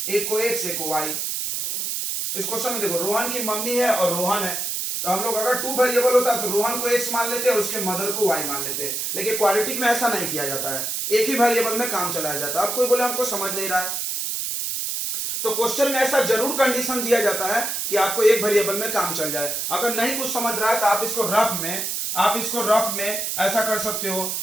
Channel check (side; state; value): right; noise; hiss, 2 dB below the sound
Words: एक को x एक को y। इस क्वेश्चन में देखो रोहन की मम्मी है और रोहन है, तो हम लोग अगर 2 वेरिएबल होता तो रोहन को x मान लेते और उसके मदर को y मान लेते, लेकिन क्वाड्रेटिक में ऐसा नहीं किया जाता है, एक ही वेरिएबल में काम चलाया जाता है। अब कोई बोले हमको समझ नहीं रहा है, तो क्वेश्चन में ऐसा जरूर कंडीशन दिया जाता है कि आपको एक वेरिएबल में काम चल जाए। अगर नहीं कुछ समझ रहा है तो आप इसको रफ में ऐसा कर सकते हो